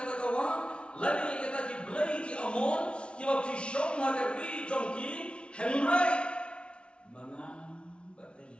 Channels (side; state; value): right; late; 0.058 ms